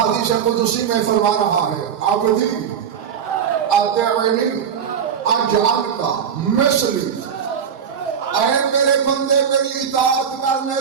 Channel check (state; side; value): quieter; left; 7.7 dB